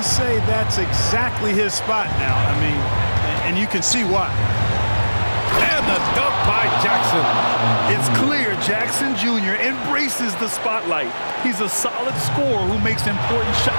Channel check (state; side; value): inverted; both; correlation -1.00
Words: say that's exactly his spot now. I mean, and you can see why. And the dunk by Jackson. It's clear Jackson Jr. embraces the spotlight. He's a solid scorer who makes important